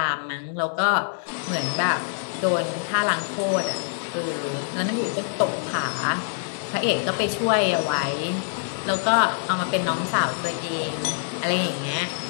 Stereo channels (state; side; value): silent; right; digital silence